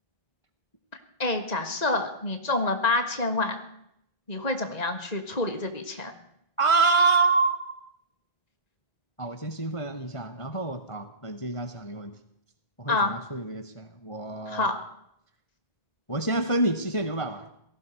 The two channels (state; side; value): late; right; 1.5 ms